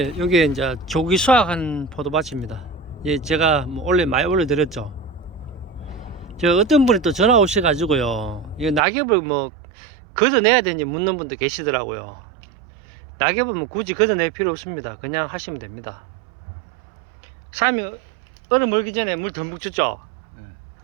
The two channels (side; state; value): left; drops out; at 8.8 s